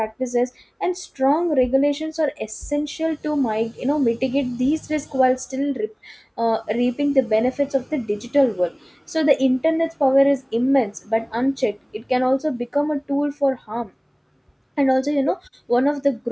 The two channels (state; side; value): identical; both; correlation 1.00